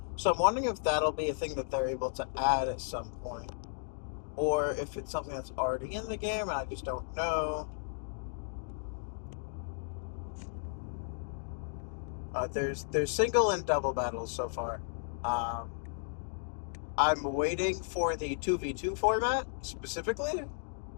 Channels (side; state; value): right; silent; digital silence